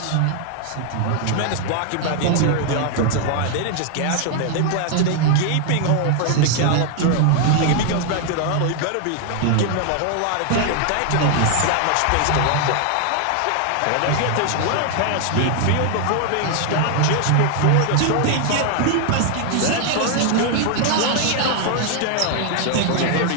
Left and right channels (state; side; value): different; both; correlation 0.00